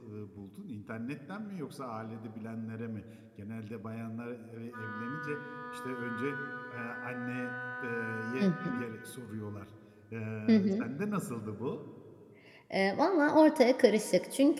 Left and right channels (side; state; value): both; identical; correlation 1.00